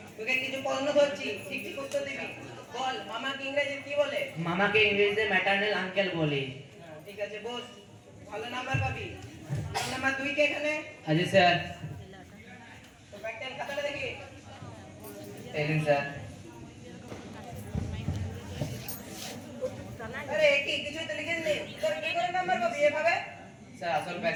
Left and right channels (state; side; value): identical; both; correlation 1.00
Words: তোকে কিছু প্রশ্ন ধরছি, ঠিক ঠিক উত্তর দিবি। বল, মামাকে ইংরেজিতে কি বলে? মামাকে ইংরেজিতে ম্যাটারনাল আঙ্কেল বলে। ঠিক আছে, বস। ভালো নাম্বার পাবি। রোল নাম্বার 2 কে এখানে? আজি স্যার। তো প্র্যাকটিক্যাল খাতাটা দেখি। এই দিন স্যার। আরে কি কিছুই তো লিখিস নি, তোর কি করে নাম্বার পাবি এভাবে? স্যার আসল